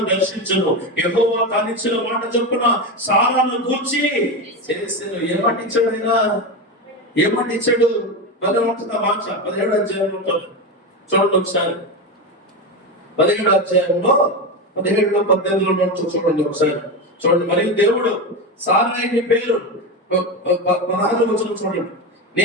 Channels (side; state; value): both; normal; correlation 0.17